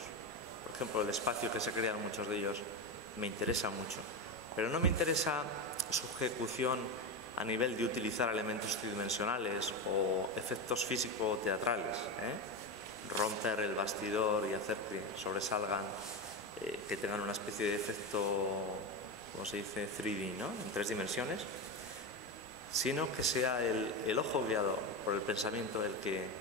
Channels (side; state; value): both; normal; correlation 0.17